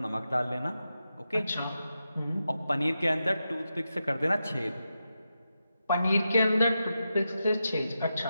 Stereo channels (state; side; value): inverted; both; correlation -0.89